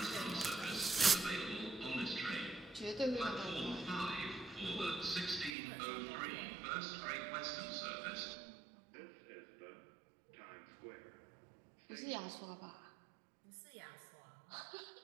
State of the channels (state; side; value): drops out; left; at 5.6 s